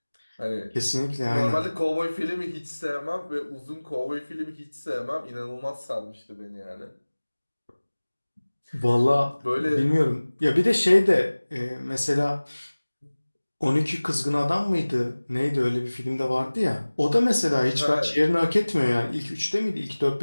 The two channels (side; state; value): both; inverted; correlation -1.00